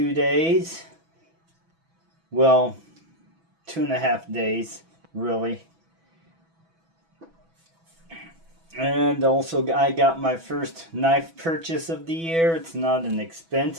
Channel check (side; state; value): left; late; 6.1 ms